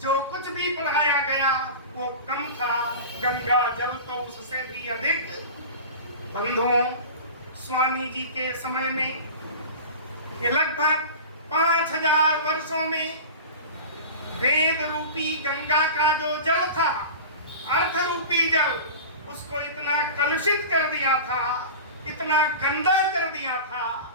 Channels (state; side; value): inverted; both; correlation -0.33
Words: जो कुछ भी पढ़ाया गया वो कम था, गंगा जल तो उससे भी अधिक। बंधुओं, स्वामी जी के समय में ये लगभग 5000 वर्षों में वेद रूपी गंगा का जो जल था, अर्थ रूपी जल, उसको इतना कलुषित कर दिया था, इतना गंदा कर दिया था।